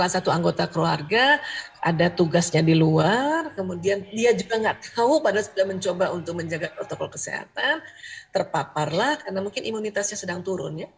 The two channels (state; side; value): identical; both; correlation 1.00